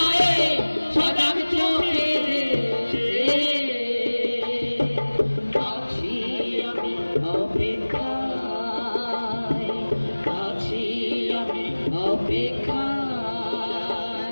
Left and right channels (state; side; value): inverted; both; correlation -1.00